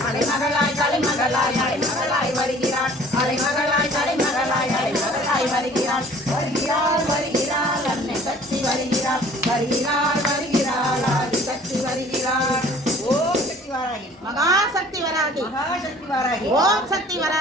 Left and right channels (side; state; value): both; normal; correlation 0.51